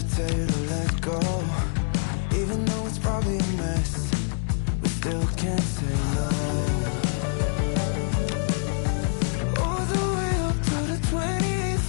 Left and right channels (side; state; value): right; silent; 59 dB below the other